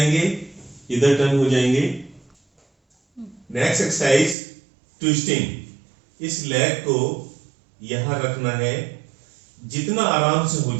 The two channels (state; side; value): drops out; left; at 4.4 s